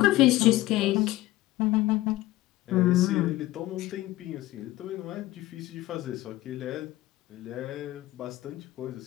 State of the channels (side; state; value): right; quieter; 17.2 dB